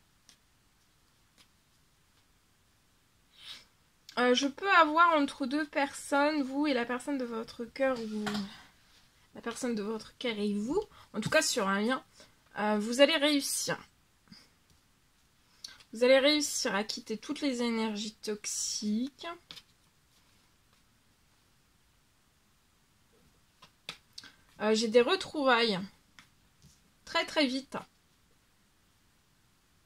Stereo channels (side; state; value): both; identical; correlation 1.00